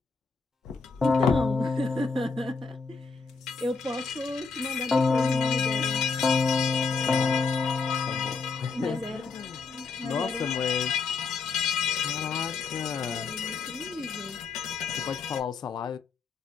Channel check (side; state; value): right; quieter; 4.6 dB